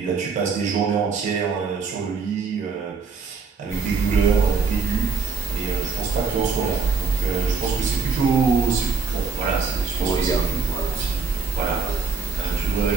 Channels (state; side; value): quieter; left; 5.0 dB